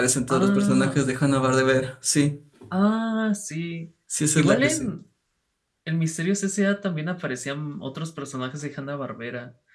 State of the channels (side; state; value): both; identical; correlation 1.00